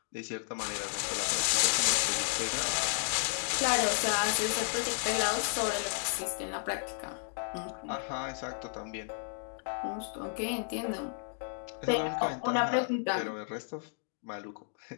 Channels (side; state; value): right; silent; 56 dB below the other